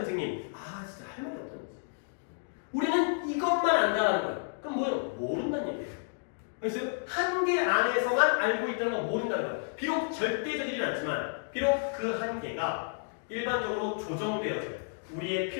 진짜 할 말이 없다는 거지. 우리는 이것만 안다는 거야. 그럼 뭐예요? 모른다는 얘기예요. 그래서 한계 안에서만 알고 있다는 건 모른다는 거야. 비록 절대적이진 않지만, 비록 그 한계가 일반적으로 조정되어져요. 우리의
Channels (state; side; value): silent; right; digital silence